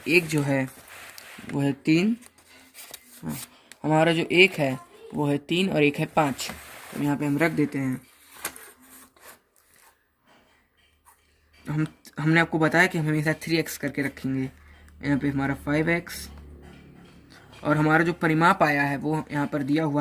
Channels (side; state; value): both; identical; correlation 1.00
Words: एक जो है वो है 3, हमारा जो एक है वो है 3 और एक है 5। तो यहाँ पे हम रख देते हैं। हमने आपको बताया कि हम हमेशा 3x करके रखेंगे। यहाँ पे हमारा 5x और हमारा जो परिमाप आया है वो यहाँ पर दिया